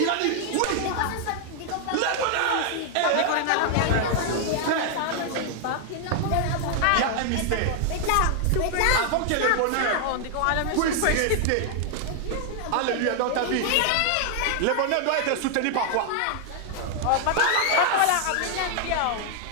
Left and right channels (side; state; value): both; different; correlation 0.00